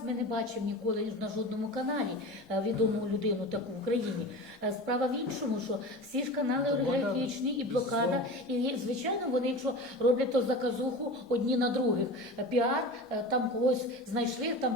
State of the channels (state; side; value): normal; both; correlation 0.32